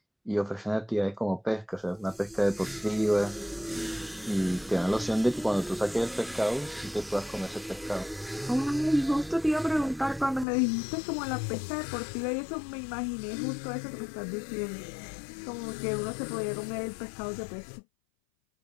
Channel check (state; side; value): drops out; right; at 10.5 s